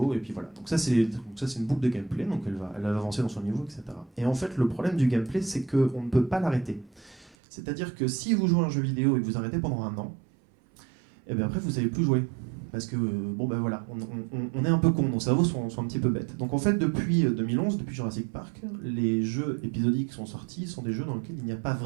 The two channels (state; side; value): drops out; left; at 7.4 s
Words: et puis voilà. Donc ça, c'est une boucle de gameplay, donc elle va avancer dans son niveau, etc. Et en fait, le problème du gameplay, c'est qu'on ne peut pas l'arrêter. C'est-à-dire que si vous jouez à un jeu vidéo et que vous arrêtez pendant 1 an, et bien après, vous ne savez plus jouer. Parce que, voilà, on est un peu con, nos cerveaux sont un petit peu bêtes. Donc en fait, depuis 2011, depuis Jurassic Park, les jeux épisodiques qui sont sortis sont des jeux dans lesquels il n'y a pas